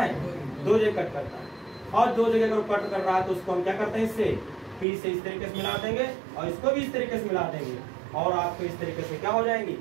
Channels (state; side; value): drops out; left; at 4.9 s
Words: 2 जगह कट करता है। और 2 जगह अगर कट कर रहा है तो उसको हम क्या करते हैं, इससे P से इस तरीके से मिला देंगे, और इसको भी इस तरीके से मिला देंगे, और आपको इस तरीके से क्या हो जाएंगी,